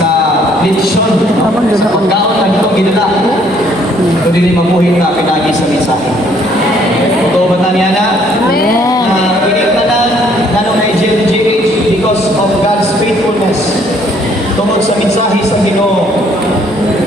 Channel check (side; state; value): both; normal; correlation 0.64